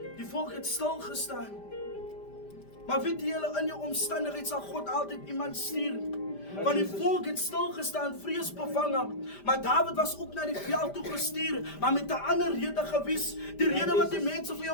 die volk het stil gestaan. Maar weet julle, in jou omstandigheid sal God altyd iemand stuur. Want die volk het stil gestaan, vreesbevange. Maar Dawid was ook na die veld toe gestuur, maar met 'n ander rede gewees. Die rede wat die mense vir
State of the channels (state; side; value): late; right; 5.0 ms